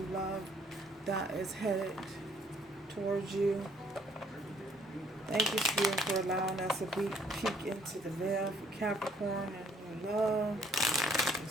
love that is headed towards you. Thank you, Spirit, for allowing us to peek into the veil for Capricorn and new love.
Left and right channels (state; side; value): normal; both; correlation 0.63